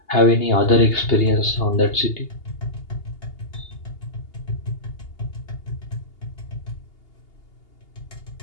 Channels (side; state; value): right; late; 2.8 ms